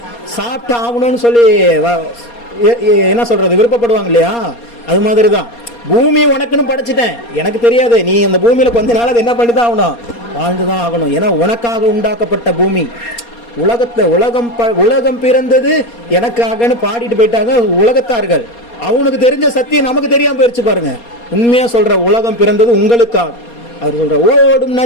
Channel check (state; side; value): late; right; 4.2 ms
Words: சாப்பிட்டு ஆகணும்னு சொல்லி என்ன சொல்றது, விருப்பப்படுவாங்க இல்லையா? அது மாதிரி தான் பூமி உனக்குன்னு படைச்சிட்டேன், எனக்கு தெரியாது, நீ அந்த பூமியில கொஞ்ச நாள் அதை என்ன பண்ணி தான் ஆகணும், வாழ்ந்துதான் ஆகணும். ஏன்னா உனக்காக உண்டாக்கப்பட்ட பூமி. உலகம் பிறந்தது எனக்காகன்னு பாடிட்டு போயிட்டாங்க உலகத்தார்கள். அவனுக்கு தெரிஞ்ச சத்தியம் நமக்கு தெரியாம போயிடுச்சு பாருங்க. உண்மையா சொல்ற, உலகம் பிறந்தது உங்களுக்காக. அவர் சொல்ற ஓடும்